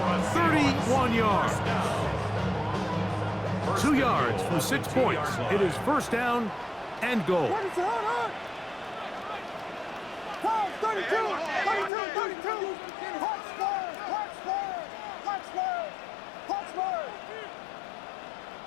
31 yards. 2 yards from 6 points. It is first down and goal. 32!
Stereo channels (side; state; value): right; drops out; at 11.9 s